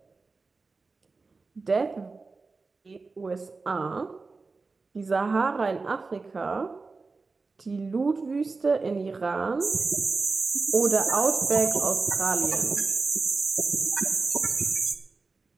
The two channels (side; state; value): left; quieter; 4.1 dB